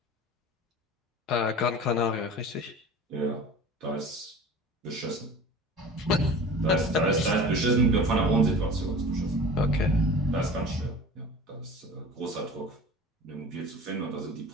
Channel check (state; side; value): normal; both; correlation 0.39